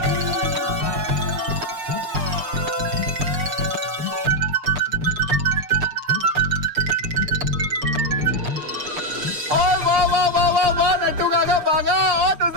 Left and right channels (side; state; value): left; late; 6.7 ms